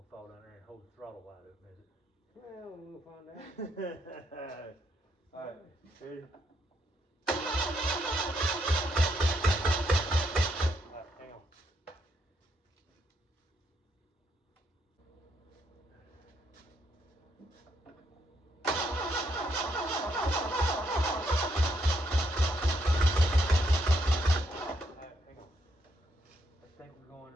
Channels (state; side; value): normal; both; correlation 0.76